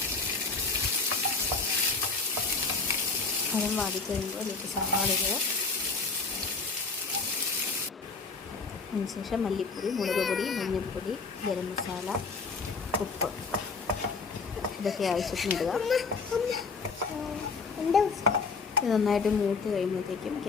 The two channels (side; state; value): right; quieter; 4.4 dB